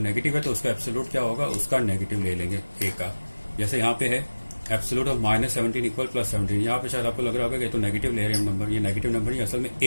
है तो उसका एब्सोल्यूट क्या होगा, उसका नेगेटिव ले लेंगे ए का। जैसे यहाँ पे है एब्सोल्यूट ऑफ -17 इक्वल +17। यहाँ पे शायद आपको लग रहा होगा कि तो नेगेटिव ले रहे हैं नंबर, ये नेगेटिव नंबर नहीं, असल में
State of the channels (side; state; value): both; inverted; correlation -1.00